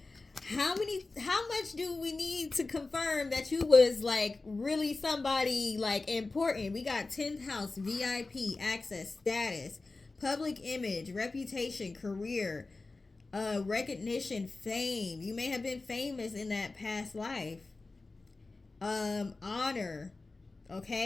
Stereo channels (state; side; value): quieter; right; 3.5 dB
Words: How much do we need to confirm that you was like really somebody like important? We got 10th house, VIP, access, status, public image, reputation, career, recognition, fame. You may have been famous in that past life. Honor,